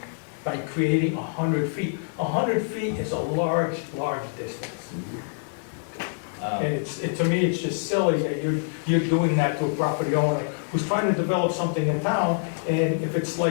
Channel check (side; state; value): right; silent; digital silence